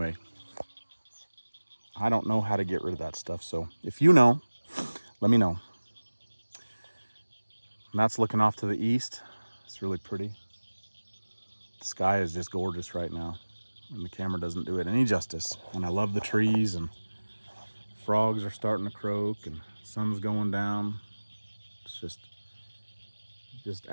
I don't know how to get rid of that stuff. So if you know, let me know. And that's looking off to the east. It's really pretty. The sky is just gorgeous right now, and the camera doesn't do it any justice. And I love the trees, and frogs are starting to croak, and sun's going down. It's just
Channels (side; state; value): both; inverted; correlation -1.00